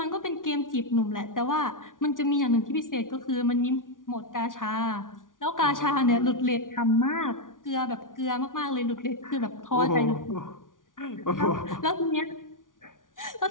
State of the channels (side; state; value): right; late; 0.88 ms